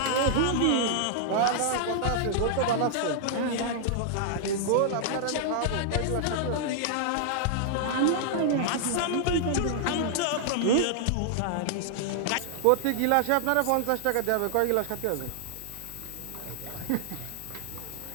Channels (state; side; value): different; both; correlation -0.01